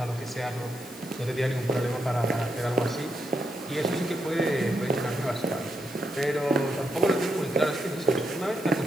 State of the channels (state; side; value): noise; left; hiss, 19 dB below the sound